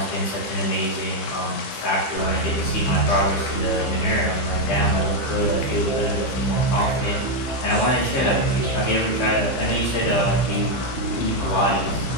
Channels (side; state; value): right; late; 15 ms